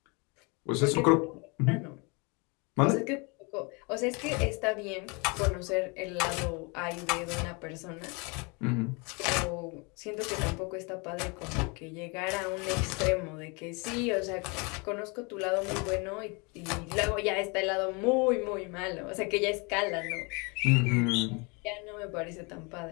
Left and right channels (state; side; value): quieter; right; 30.5 dB